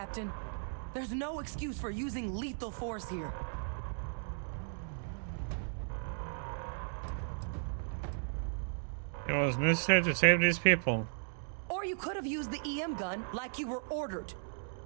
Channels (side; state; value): left; silent; digital silence